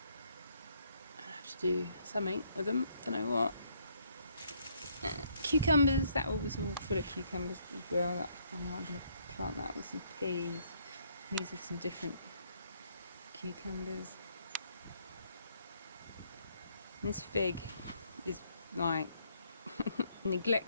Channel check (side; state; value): both; inverted; correlation -0.69